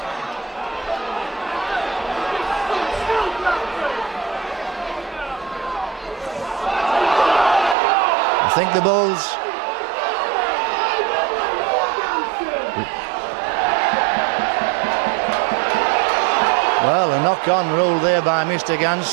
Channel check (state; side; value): drops out; left; at 7.8 s